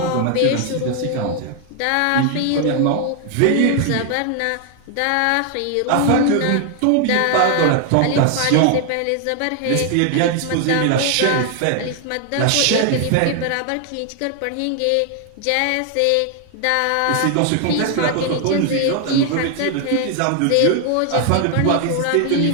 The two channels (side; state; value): both; different; correlation 0.00